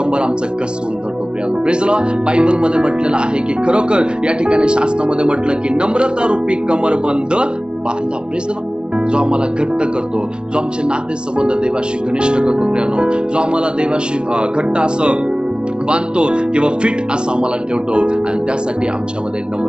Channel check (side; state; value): left; late; 0.050 ms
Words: आमचं कसवून धरतो प्रियांनो. प्रेज लॉर्ड बायबलमध्ये म्हटलेलं आहे की खरोखर या ठिकाणी शास्त्रामध्ये म्हटलं की नम्रता रूपी कमरबंद बांधा. प्रेज लॉर्ड जो आम्हाला घट्ट करतो, जो आमचे नाते संबंध देवाशी घनिष्ठ करतो प्रियांनो, जो आम्हाला देवाशी घट्ट असं बांधतो किंवा फिट असं आम्हाला ठेवतो, आणि त्यासाठी आमच्यामध्ये